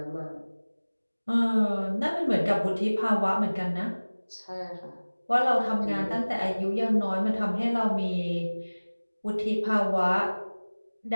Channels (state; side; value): inverted; both; correlation -1.00